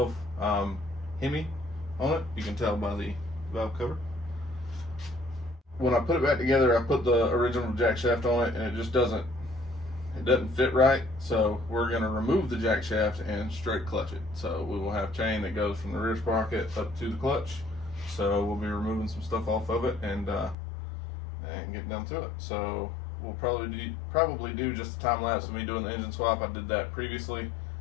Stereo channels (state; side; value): drops out; right; at 20.6 s